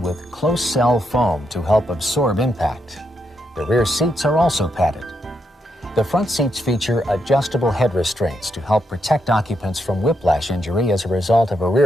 with close-cell foam to help absorb impact. The rear seats are also padded. The front seats feature adjustable head restraints to help protect occupants from whiplash injury as a result of a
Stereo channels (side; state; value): both; normal; correlation 0.80